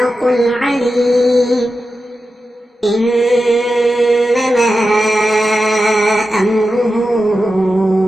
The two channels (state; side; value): normal; both; correlation 0.91